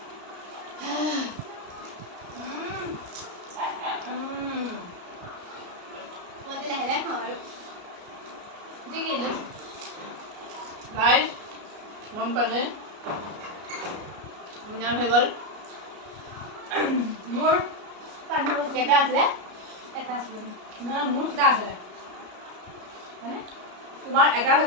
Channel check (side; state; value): left; late; 33 ms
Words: গাইজ গম পালে উইনাৰ হৈ গ'ল। মোৰ কেইটা আছিলে? এটা আছিলে। নহয়, মোৰ কেইটা আছিলে মানে তোমাৰ এটা